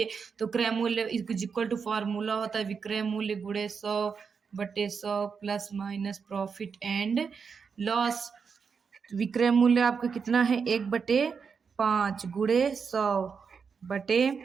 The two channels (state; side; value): quieter; left; 5.9 dB